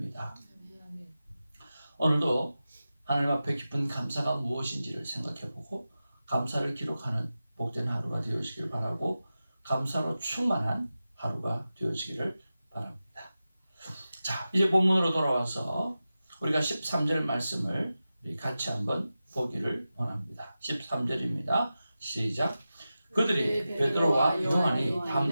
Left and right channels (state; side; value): inverted; both; correlation -0.93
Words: 오늘도 하나님 앞에 깊은 감사가 무엇인지를 생각해보고 감사를 기록하는 복된 하루가 되어지길 바라고 감사로 충만한 하루가 되어지기를 바랍니다. 자, 이제 본문으로 돌아와서 우리가 13절 말씀을 같이 한번 보기를 원합니다. 13절입니다. 시작. 그들이 베드로와 요한이